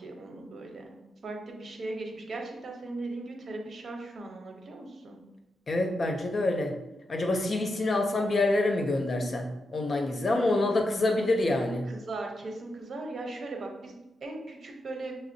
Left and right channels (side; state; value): both; normal; correlation 0.86